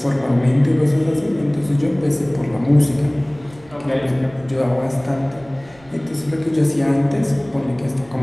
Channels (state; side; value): noise; right; rumble, 26 dB below the sound